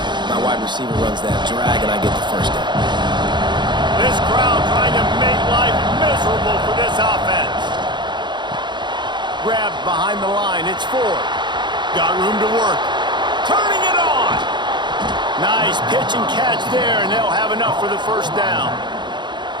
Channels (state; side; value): late; left; 0.22 ms